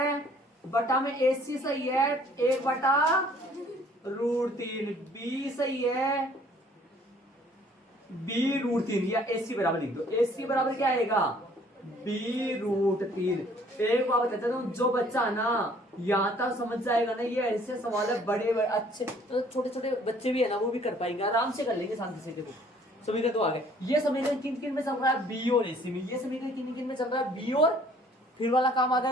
बटा में AC सही है, 1/√3, B सही है B√3, या AC बराबर लिख दो। AC बराबर क्या आएगा B√3। एक बात बताता हूँ, जो बच्चा ना यहाँ तक समझ जाएगा ना, ये ऐसे सवाल है बड़े अच्छे, तो छोटे छोटे बच्चे भी है ना वो भी कर पाएंगे, आराम से कर लेंगे शांति से। देखो समीकरण तो आ गए। ये समीकरण किन में चल रहा है, B और AC में। ये समीकरण किन में चल रहा है, B, और फिर वाला काम आ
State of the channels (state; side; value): normal; both; correlation 0.58